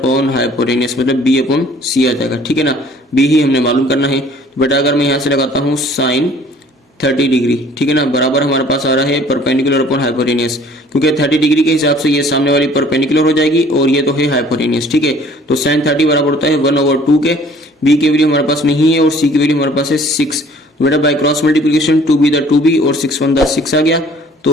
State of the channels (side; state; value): both; normal; correlation 0.54